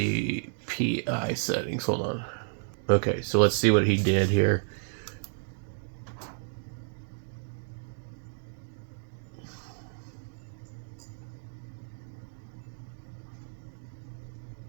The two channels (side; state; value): left; silent; digital silence